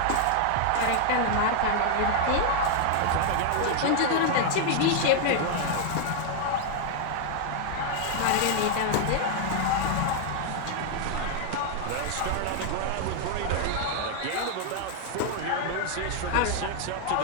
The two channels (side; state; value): both; different; correlation 0.00